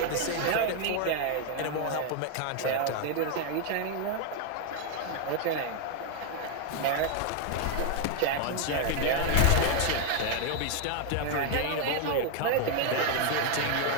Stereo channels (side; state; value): both; different; correlation 0.00